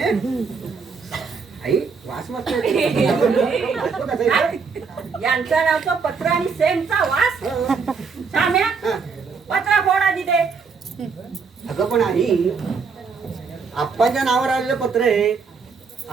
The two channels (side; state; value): left; quieter; 5.3 dB